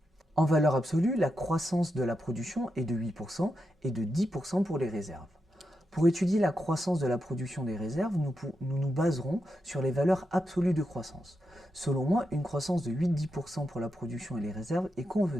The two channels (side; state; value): both; normal; correlation 0.86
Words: En valeur absolue, la croissance de la production est de 8% et de 10% pour les réserves. Pour étudier la croissance de la production des réserves, nous nous baserons sur les valeurs absolues de croissance. Selon moi, une croissance de 8-10% pour la production et les réserves est